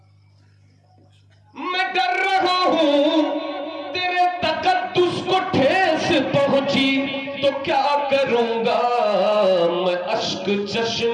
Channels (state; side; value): identical; both; correlation 1.00